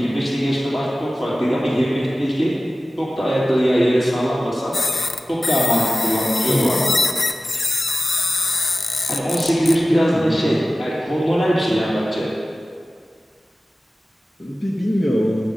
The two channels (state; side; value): normal; both; correlation 0.96